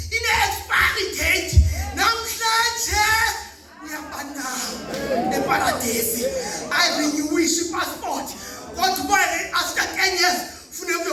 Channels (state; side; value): identical; both; correlation 1.00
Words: ine-expiry date namhlanje uyabanama eParadesi ayirenewisha i-passport kodwa after 10 years funeka